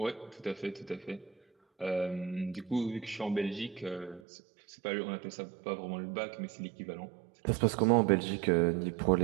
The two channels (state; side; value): drops out; left; at 4.2 s